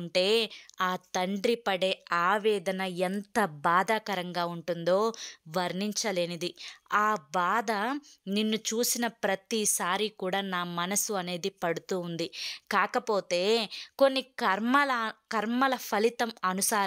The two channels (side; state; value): both; identical; correlation 1.00